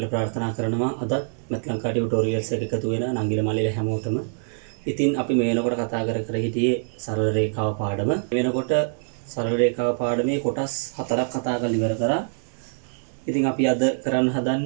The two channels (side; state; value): left; silent; 62 dB below the other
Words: ප්‍රාර්ථනා කරනවා. අද මෙත් ලංකා ටියුටෝරියල්ස් එක එකතු වෙන නංගිල මල්ලිල හැමෝටම. ඉතින් අපි මේ වෙනකොට කතා කර හිටියේ සරල රේඛාව පාඩම. මේ වෙනකොට සරල රේඛාව පාඩමේ කොටස් 4ක් කතා කරලා ඉවර කරා. ඉතින් අපි අද කරන්න